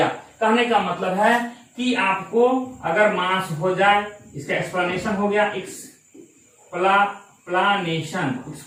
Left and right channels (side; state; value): both; identical; correlation 1.00